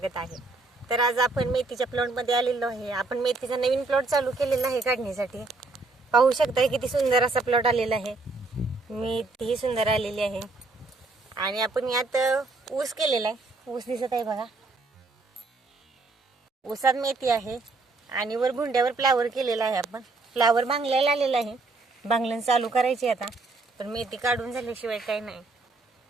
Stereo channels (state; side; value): quieter; left; 3.5 dB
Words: आहे। तर आज आपण मेथीच्या प्लॉटमध्ये आलेलो आहे। आपण मेथीचा नवीन प्लॉट चालू केलेला आहे काढण्यासाठी। पाहू शकता किती सुंदर असा प्लॉट आलेला आहे। मेथी सुंदर आलेली आहे आणि आपण यात ऊस केलेला आहे। ऊस दिसत आहे बघा, ऊसात मेथी आहे आणि वर भुंड्यावर फ्लावर केलेला आहे। आपण फ्लावर बांगल्याला आलेला आहे, बांगलन चालू करायची आता। पण मेथी काढून झाल्याशिवाय काही नाही,